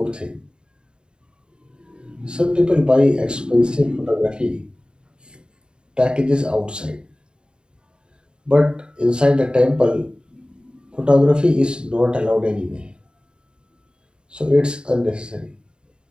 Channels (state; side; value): late; left; 0.050 ms